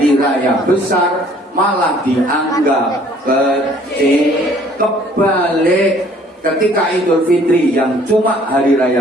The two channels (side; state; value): both; normal; correlation 0.57